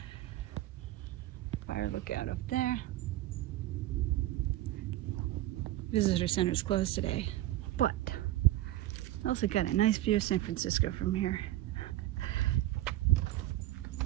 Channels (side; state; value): left; quieter; 15.1 dB